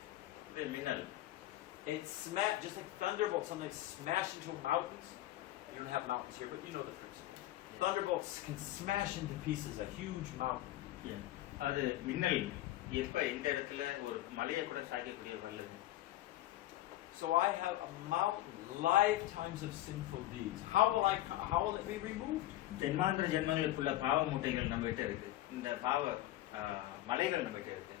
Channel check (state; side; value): quieter; right; 15.0 dB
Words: இது மின்னல். It's just like thunderbolt, sometimes smash into mountains. You don't have mountains here, but you know the principle. Thunderbolts can smash into pieces a huge mountain. அது மின்னல் எப்ப இந்த இடத்துல ஒரு மலையை கூட சாய்க்கக்கூடிய வல்லது. So I have a mountain, lifetimes of sinful deeds. How will it be removed? ஜென்மாந்திர ஜென்மங்களுக்குள்ள பாவ மூட்டைகள் நம்ம கிட்ட இருக்கு, இந்த பாவ மலைகள் நம்ம கிட்ட இருக்கு.